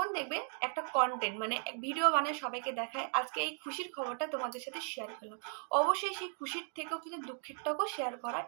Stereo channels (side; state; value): left; silent; 53 dB below the other